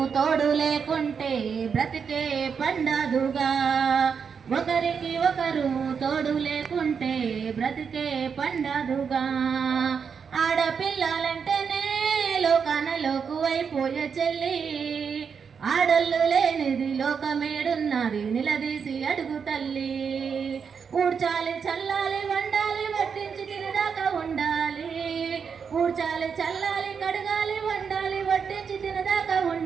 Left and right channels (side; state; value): left; quieter; 6.4 dB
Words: తోడు లేకుంటే బ్రతికే పండదుగా. ఒకరికి ఒకరు తోడు లేకుంటే బ్రతికే పండదుగా. ఆడపిల్లలంటేనే లోకానలోకు అయిపోయే చెల్లి. ఆడళ్ళు లేనిది లోకమేడున్నది నిలదీసి అడుగు తల్లి. ఊడ్చాలి చల్లాలి వండాలి వడ్డించి తినదాకా ఉండాలి. ఊడ్చాలి చల్లాలి కడగాలి వండాలి వడ్డించి తినదాకా